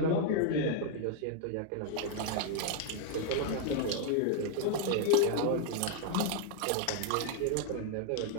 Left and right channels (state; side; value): different; both; correlation 0.00